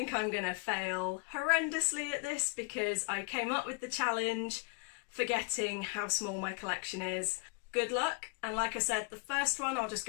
I'm going to fail horrendously at this because I came up with the challenge forgetting how small my collection is. Good luck, and like I said, the first one I'll just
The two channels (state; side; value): quieter; right; 31.0 dB